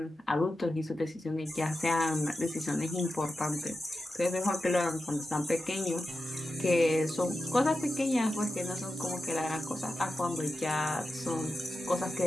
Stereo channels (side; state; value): both; normal; correlation 0.91